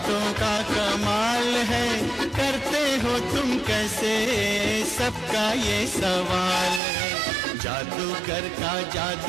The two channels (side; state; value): left; drops out; at 6.8 s